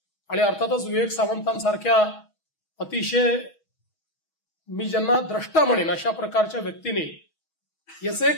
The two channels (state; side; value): late; right; 6.3 ms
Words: आणि अर्थातच विवेक सावंतांसारख्या अतिशय मी ज्यांना द्रष्टा म्हणेन अशा प्रकारच्या व्यक्तीने याचं